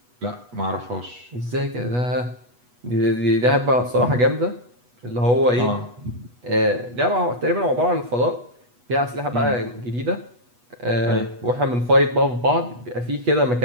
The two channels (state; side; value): late; left; 8.2 ms